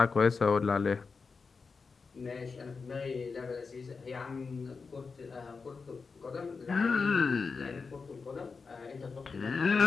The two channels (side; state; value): right; quieter; 4.8 dB